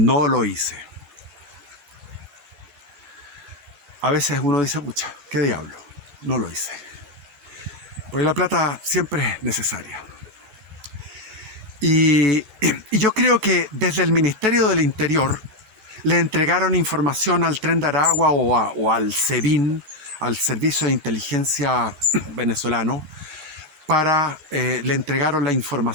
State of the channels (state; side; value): late; left; 13 ms